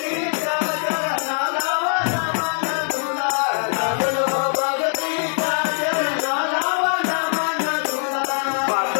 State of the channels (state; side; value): silent; right; 60 dB below the other